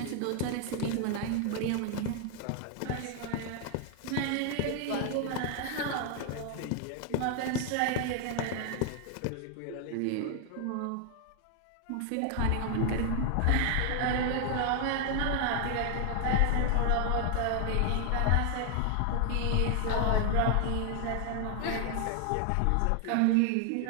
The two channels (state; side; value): different; both; correlation 0.00